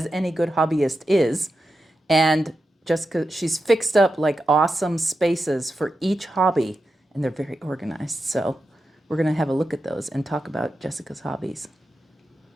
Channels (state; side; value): normal; both; correlation 0.89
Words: any good hobbyist is. And Jessica, she's fixed up like awesome spaces for each hobby, and they're very organized. So we're going to have a look at those and talk about Jessica's hobbies.